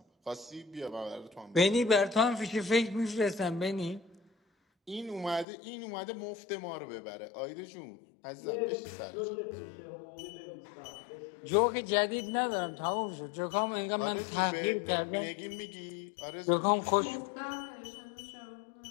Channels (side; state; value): right; drops out; at 5.5 s